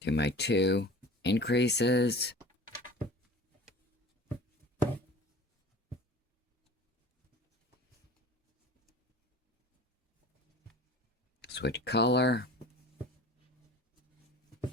Do my 2 increases. Switch color.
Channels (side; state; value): both; normal; correlation 0.39